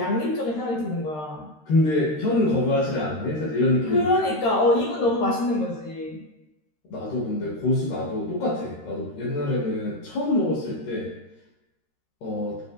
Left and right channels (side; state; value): right; late; 13 ms